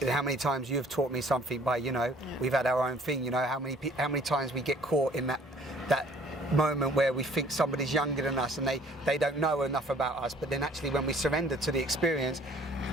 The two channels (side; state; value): both; normal; correlation 0.56